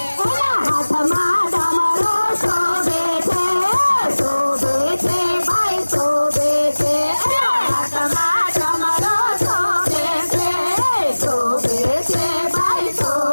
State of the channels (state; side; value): inverted; both; correlation -1.00